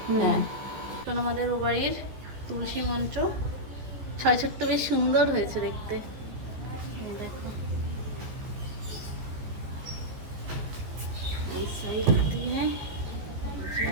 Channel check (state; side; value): late; left; 15 ms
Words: হ্যাঁ আমাদের ও বাড়ির তুলসী মঞ্চ 6 ছোট্ট, বেশ সুন্দর হয়েছে দেখতে। দেখো এই সাইড দিয়ে,